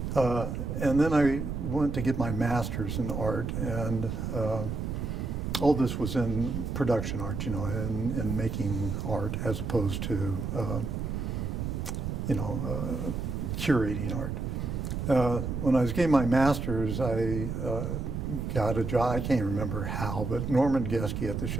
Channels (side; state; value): right; noise; rumble, 3 dB below the sound